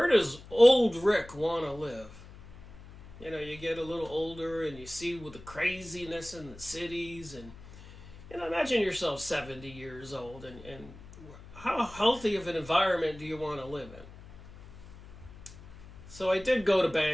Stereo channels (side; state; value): left; noise; hum, 18 dB below the sound